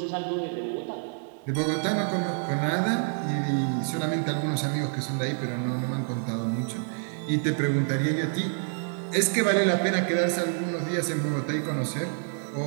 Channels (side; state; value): left; silent; 57 dB below the other